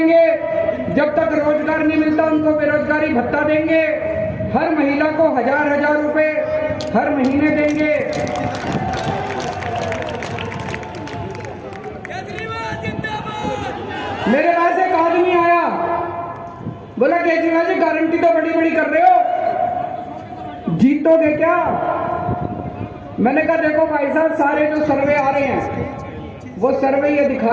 जब तक रोजगार नहीं मिलता उनको बेरोजगारी भत्ता देंगे। हर महिला को 1000 रुपए हर महीने देंगे। मेरे पास एक आदमी आया, बोला केजरीवाल जी गारंटी तो बड़ी बड़ी कर रहे हो, जीतोगे क्या? मैंने कहा देखो भाई साहब, सारे जो सर्वे आ रहे हैं वो सर्वे ये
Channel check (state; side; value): identical; both; correlation 1.00